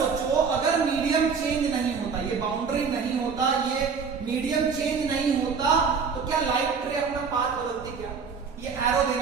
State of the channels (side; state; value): left; quieter; 5.7 dB